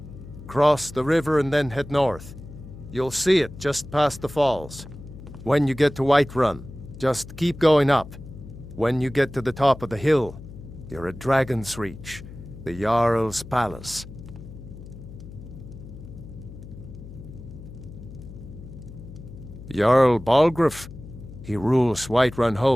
Cross the river and then head north. You'll see it just past the falls. When you get to Whiterun, just keep going up. When you get to the top of the hill, you're at Dragon's Reach, the Jarl's Palace. Jarl Balgruuf, he rules Whiterun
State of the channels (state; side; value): noise; left; hum, 15 dB below the sound